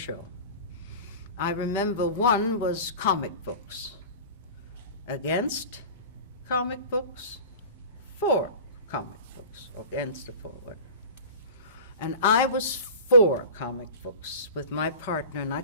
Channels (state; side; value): inverted; both; correlation -0.37